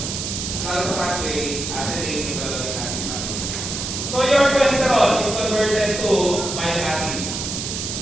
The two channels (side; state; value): right; noise; hiss, 4 dB below the sound